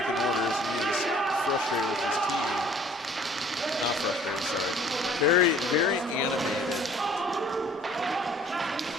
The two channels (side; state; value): both; normal; correlation 0.54